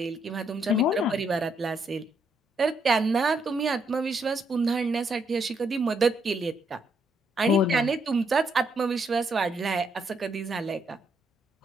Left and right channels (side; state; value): both; normal; correlation 0.75